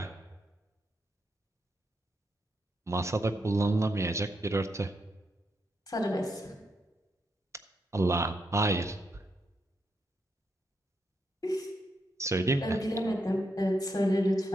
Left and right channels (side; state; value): both; normal; correlation 0.81